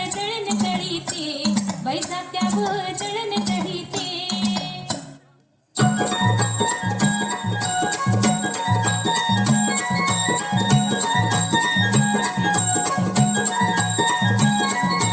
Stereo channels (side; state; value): both; identical; correlation 1.00